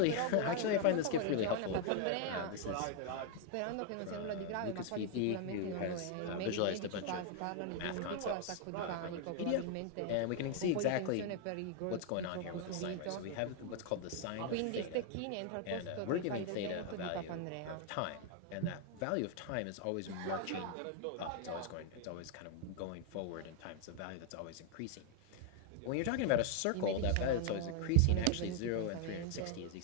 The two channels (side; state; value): both; different; correlation 0.00